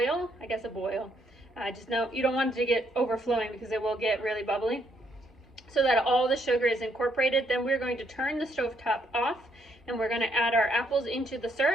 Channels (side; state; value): both; normal; correlation 0.72